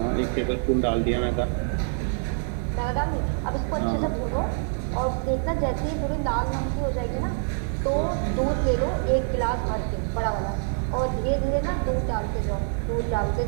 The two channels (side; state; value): left; silent; 61 dB below the other